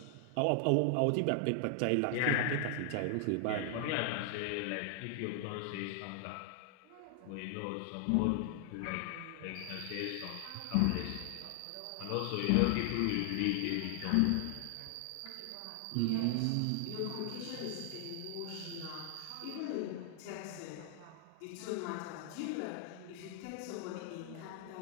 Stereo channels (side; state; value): both; different; correlation 0.00